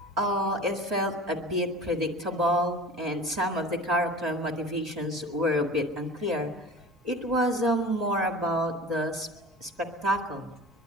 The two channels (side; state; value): both; normal; correlation 0.38